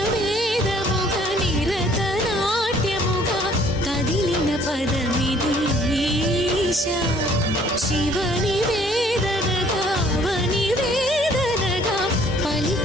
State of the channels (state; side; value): normal; both; correlation 0.59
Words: వేదముగ నిరత నాట్యముగ కదిలిన పదమిదీశా శివని వేదనగా అవని వేదనగా